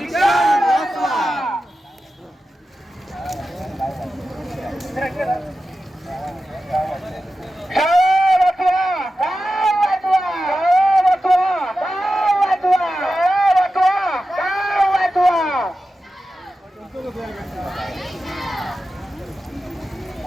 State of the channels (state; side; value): normal; both; correlation 0.92